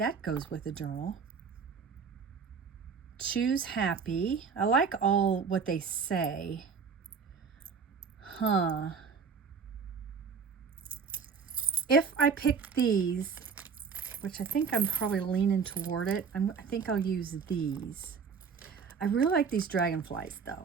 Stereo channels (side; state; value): left; quieter; 5.8 dB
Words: goes with the journal. Choose happy. I like all what they say. If I pick these, which I think I'm probably leaning toward it, I think I'll use these. I really like these dragonflies